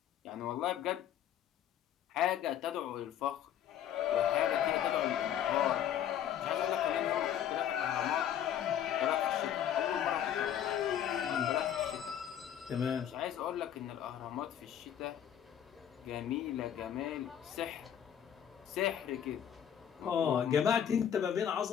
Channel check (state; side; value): quieter; right; 9.8 dB